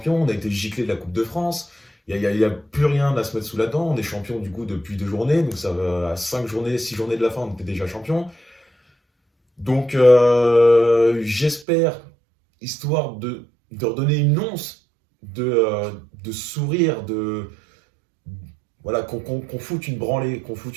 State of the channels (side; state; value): left; drops out; at 11.7 s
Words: on a été giclé de la Coupe de France, il n'y a plus rien à se mettre sous la dent, on est champion du coup depuis 2 journées, donc ça va à 5 journées, 6 journées de la fin, on était déjà champion. Donc j'espère, histoire de redonner une once de sourire, voilà, qu'on foute une branlée